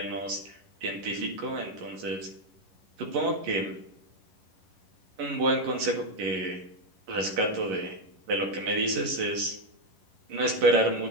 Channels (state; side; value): late; left; 11 ms